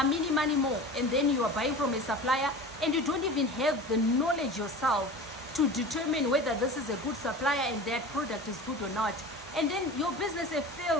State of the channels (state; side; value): normal; both; correlation 0.35